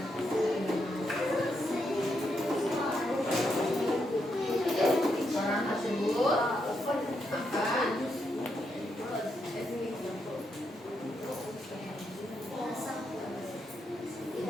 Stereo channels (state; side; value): normal; both; correlation 0.81